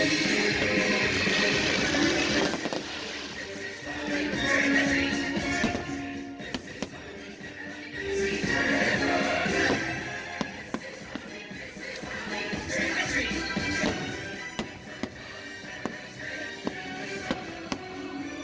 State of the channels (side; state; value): both; identical; correlation 1.00